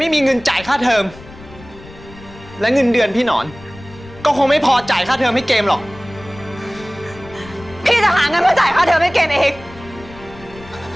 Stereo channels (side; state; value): left; noise; rumble, 19 dB below the sound